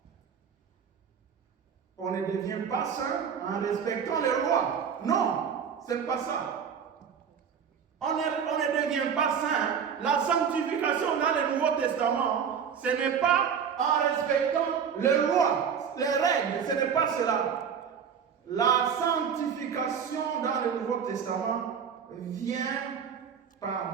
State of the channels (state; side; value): quieter; left; 7.3 dB